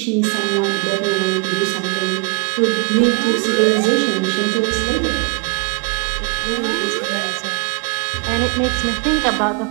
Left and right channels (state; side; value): quieter; left; 32.1 dB